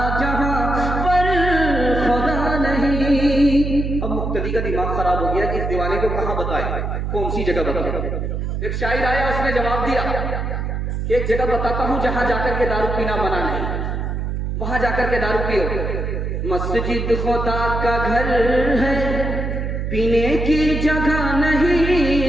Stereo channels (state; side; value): noise; right; hum, 2 dB below the sound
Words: جہاں پر خدا نہیں۔ اب مقتدی کا دماغ خراب ہو گیا کہ اس دیوانے کو کہاں بتائے، کون سی جگہ بتائے۔ ایک شاعر آیا، اس نے جواب دیا کہ ایک جگہ بتاتا ہوں جہاں جا کر کے دارو پینا منع نہیں، وہاں جا کر کے دارو پیو۔ مسجد خدا کا گھر ہے، پینے کی جگہ نہیں،